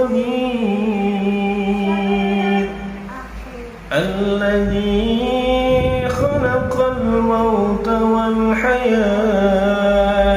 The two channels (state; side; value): identical; both; correlation 1.00